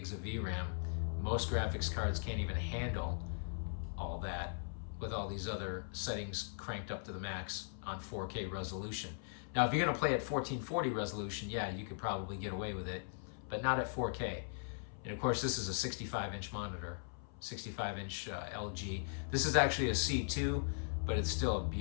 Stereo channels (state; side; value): silent; right; 52 dB below the other